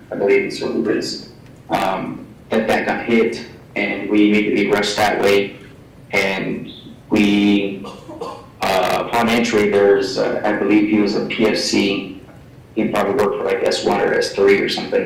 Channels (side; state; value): both; identical; correlation 1.00